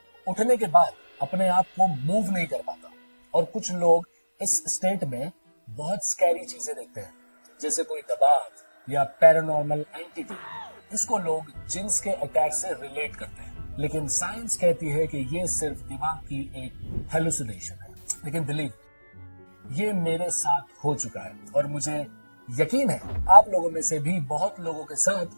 उठने के बाद अपने आप को मूव नहीं कर पाता, और कुछ लोग इस स्टेट में बहुत स्कैरी चीजें देखते हैं, जैसे कोई दबाव या पैरानॉर्मल एंटिटी। इसको लोग जिन्स के अटैक से रिलेट करते हैं, लेकिन साइंस कहती है कि ये सिर्फ दिमाग की एक हेलुसिनेशन है। लेकिन बिलीव, ये मेरे साथ हो चुका है और मुझे यकीन है आप लोगों में से भी बहुत लोगों के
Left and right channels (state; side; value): inverted; both; correlation -1.00